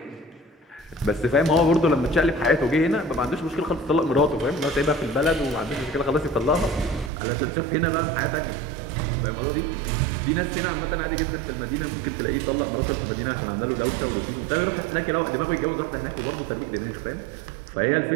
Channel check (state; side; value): drops out; left; at 7.1 s